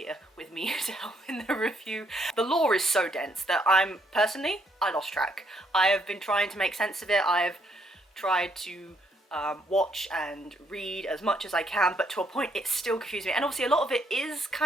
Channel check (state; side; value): normal; both; correlation 0.72